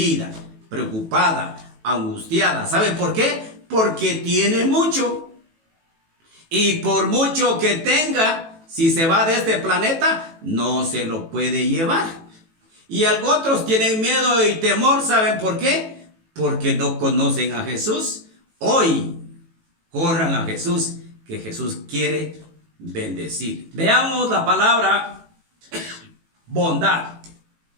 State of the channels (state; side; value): late; left; 18 ms